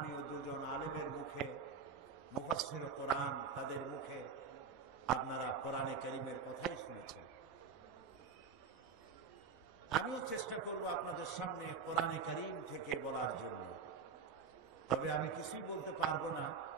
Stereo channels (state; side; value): quieter; left; 5.6 dB